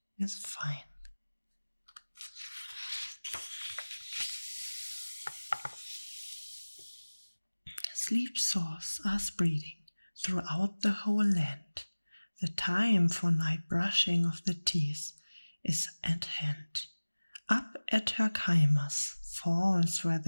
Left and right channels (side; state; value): both; inverted; correlation -1.00